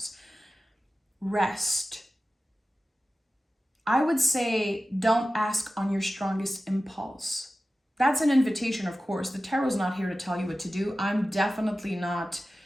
rest. I would say don't ask on your strongest impulse. That's an invitation, of course. The tarot's not here to tell you what to do. I'm definitely not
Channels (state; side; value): normal; both; correlation 0.94